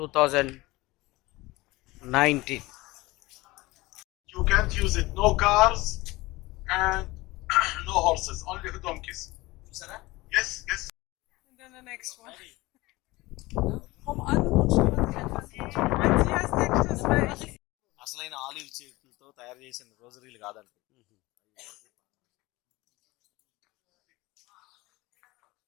You can't use it. No cars and no horses. Only donkeys. Yes, yes. And then the next one. Komm an und schau uns etwas. Wenn Sie als nächstes, weil ich అసలైన olive చెట్లతో తయారు చేసిన రోజరీలు కాదండి.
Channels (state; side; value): quieter; right; 20.7 dB